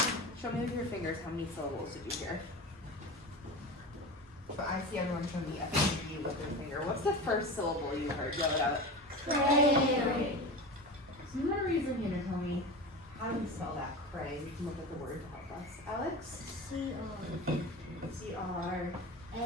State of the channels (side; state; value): both; normal; correlation 0.29